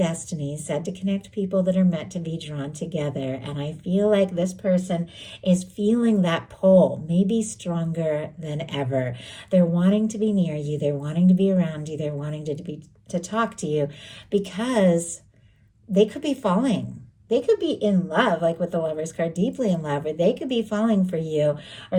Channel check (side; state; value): both; identical; correlation 1.00